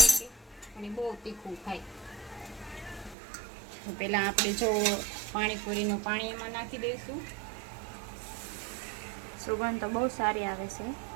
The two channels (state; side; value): drops out; left; at 3.2 s